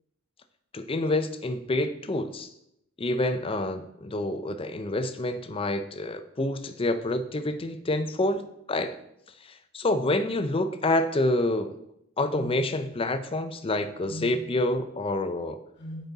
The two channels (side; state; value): both; normal; correlation 0.48